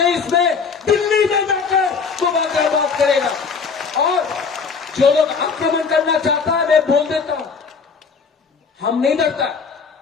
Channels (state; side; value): quieter; right; 5.4 dB